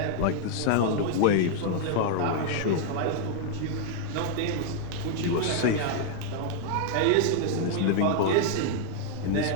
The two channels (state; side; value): different; both; correlation 0.00